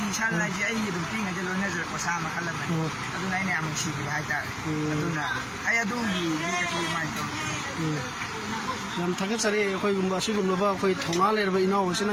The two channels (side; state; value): both; identical; correlation 1.00